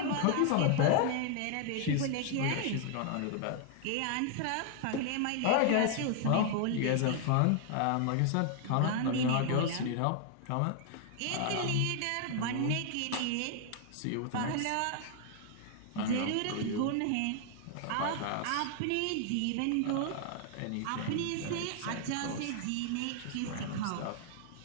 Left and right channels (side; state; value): both; different; correlation 0.00